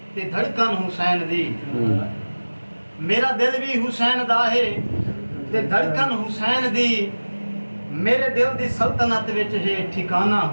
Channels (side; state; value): both; inverted; correlation -1.00